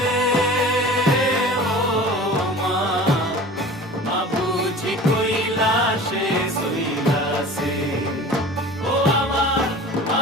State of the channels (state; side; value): normal; both; correlation 0.40